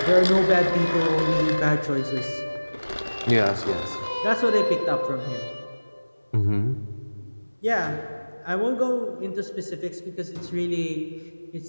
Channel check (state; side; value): inverted; both; correlation -1.00